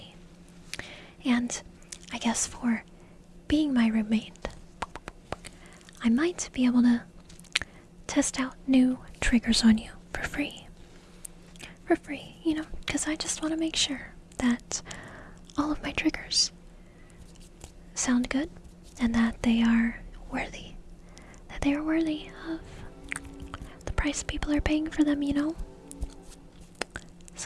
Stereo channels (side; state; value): both; identical; correlation 1.00